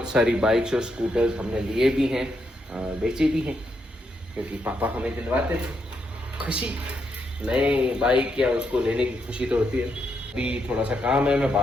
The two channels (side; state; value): both; normal; correlation 0.80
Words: सारी बाइक्स और स्कूटर्स हमने लिए भी हैं, बेचे भी हैं, क्योंकि पापा हमें दिलवाते थे। खुशी नए बाइक या उसको लेने की खुशी तो होती है। अभी थोड़ा सा काम है, मैं